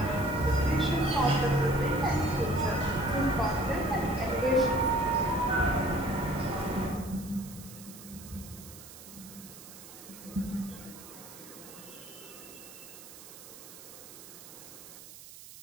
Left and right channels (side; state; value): right; noise; hiss, 16 dB below the sound